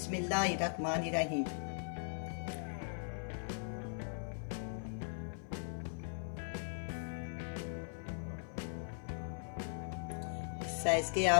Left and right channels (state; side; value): silent; right; 52 dB below the other